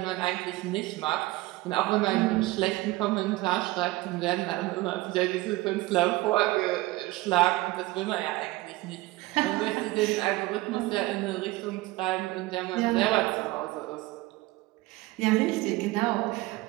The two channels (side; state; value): left; quieter; 19.5 dB